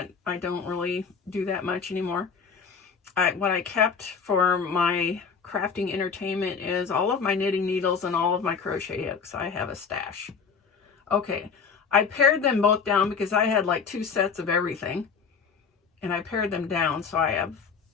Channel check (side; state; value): right; quieter; 5.9 dB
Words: really do that much anymore. What I kept for my crafting entertainment is all of my knitting needles and all of my crochet hooks. I have a stash. Okay, I pared them both down because I had like 2 sets of everything, and I pared them down so I have